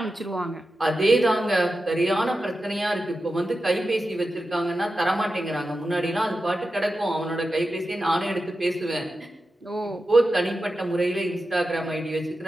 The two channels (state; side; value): normal; both; correlation 0.91